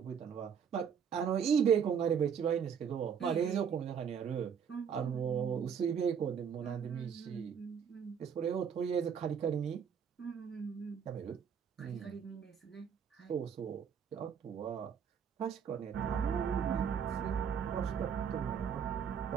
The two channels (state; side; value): quieter; left; 7.4 dB